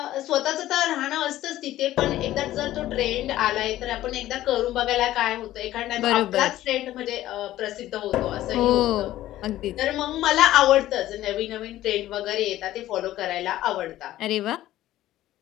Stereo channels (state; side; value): quieter; right; 14.4 dB